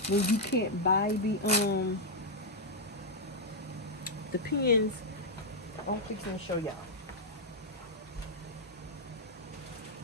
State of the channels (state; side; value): normal; both; correlation -0.02